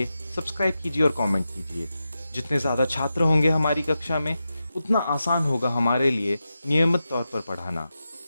सब्सक्राइब कीजिए और कमेंट कीजिए। जितने ज़्यादा छात्र होंगे हमारी कक्षा में, उतना आसान होगा हमारे लिए नियमित तौर पर पढ़ाना।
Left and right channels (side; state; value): both; inverted; correlation -0.91